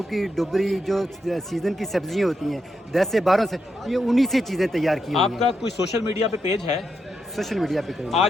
ڈبری جو سیزن کی سبزیاں ہوتی ہیں 10 سے 12 سے، یہ انہی سے چیزیں تیار کی ہوئی ہیں. آپ کا کوئی سوشل میڈیا پہ پیج ہے؟ سوشل میڈیا پہ کریں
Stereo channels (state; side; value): normal; both; correlation 0.83